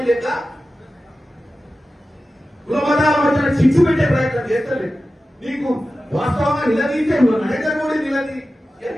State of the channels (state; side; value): normal; both; correlation 0.94